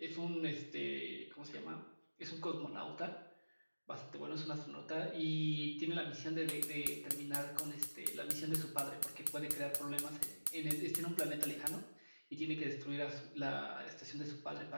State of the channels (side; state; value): both; inverted; correlation -1.00